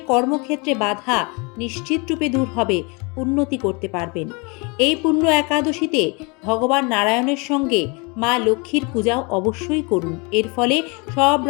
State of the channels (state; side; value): quieter; right; 30.3 dB